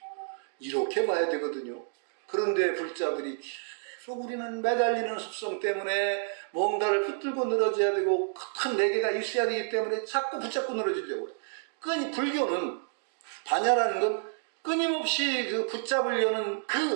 이렇게 봐야 되거든요. 그런데 불자들이 계속 우리는 매달리는 습성 때문에 뭔가를 붙들고 늘어져야 되고 큰 내계가 있어야 되기 때문에 자꾸 붙잡고 늘어지려고 해요. 불교는 반야라는 건 끊임없이 그 붙잡으려는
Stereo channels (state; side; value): silent; left; digital silence